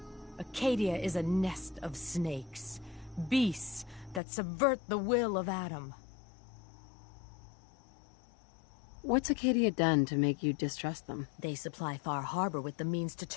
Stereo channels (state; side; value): drops out; right; at 4.2 s